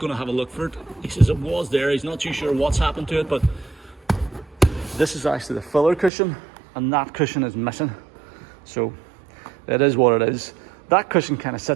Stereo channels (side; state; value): left; drops out; at 6.1 s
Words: to have a look for it. He says it was there. He's not too sure what's happened to it, but this is actually the filler cushion, and that cushion is missing. So it is what it is. That cushion kind of